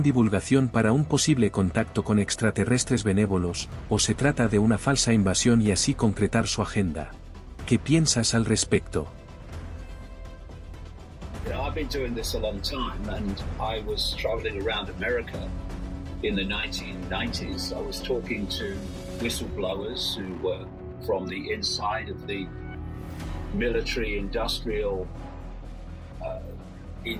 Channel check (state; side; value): identical; both; correlation 1.00